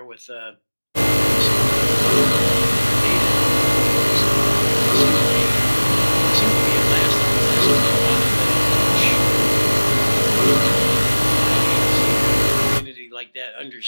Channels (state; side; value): inverted; both; correlation -1.00